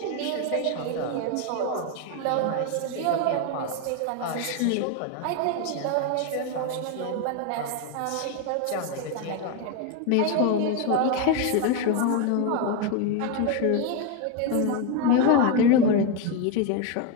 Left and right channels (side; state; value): both; different; correlation 0.02